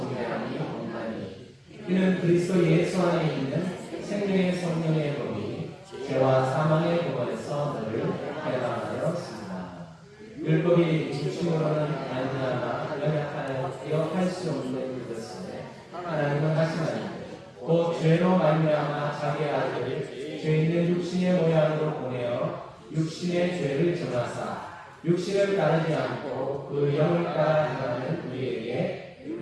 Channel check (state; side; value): identical; both; correlation 1.00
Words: 없나니 이는 그리스도 예수 안에 있는 생명의 성령의 법이 죄와 사망의 법에서 너를 해방하였습니다. 율법이 육신으로는 말미암아 연약하여 할 수 없는 것을 하나님은 하시나니 곧 죄로 말미암아 자기 아들을 죄 있는 육신의 모양으로 보내어 육신의 죄를 정하사 육신을 따르지 않고 그 영을 따라 행하는 우리에게